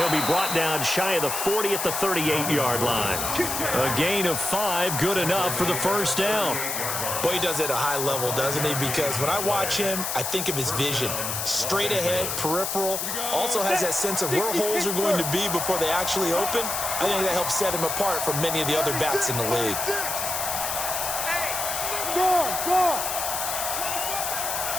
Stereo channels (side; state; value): left; noise; hiss, 2 dB below the sound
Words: be brought down shy of the 40 at the 38-yard line. A gain of 5, good enough for the 1st down. Boy, he does it at a high level, doesn't he? Because when I watch him, I think of his vision. Straight ahead, peripheral. Also has that sense of where holes are going to be before they actually open. I think that helps set him apart from many of the other backs in the league.